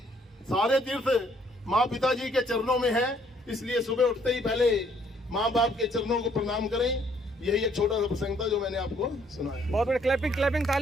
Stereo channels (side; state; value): both; normal; correlation 0.65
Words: सारे तीर्थ माँ पिताजी के चरणों में है। इसलिए सुबह उठते ही पहले माँ बाप के चरणों को प्रणाम करें। यही एक छोटा सा प्रसंग था जो मैंने आपको सुनाया। बहुत बड़े क्लैपिंग क्लैपिंग,